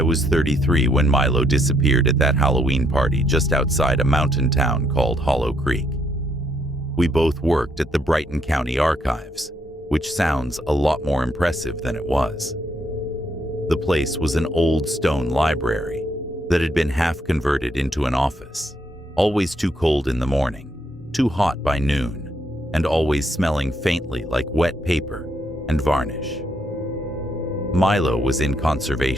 was 33 when Milo disappeared at that Halloween party just outside a mountain town called Hollow Creek. We both worked at the Brighton County Archives, which sounds a lot more impressive than it was. The place was an old stone library that had been half converted into an office, always too cold in the morning, too hot by noon, and always smelling faintly like wet paper and varnish. Milo was in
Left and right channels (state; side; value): normal; both; correlation 0.73